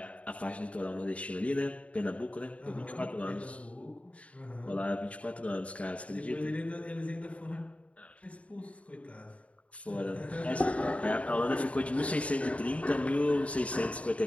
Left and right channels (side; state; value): right; late; 0.064 ms